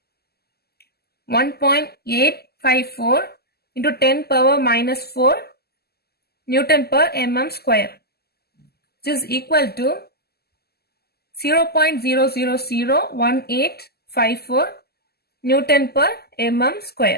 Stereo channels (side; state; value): right; late; 0.46 ms